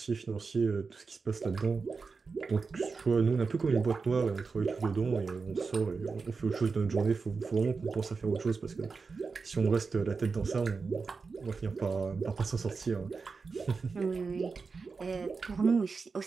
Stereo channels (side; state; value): left; quieter; 4.7 dB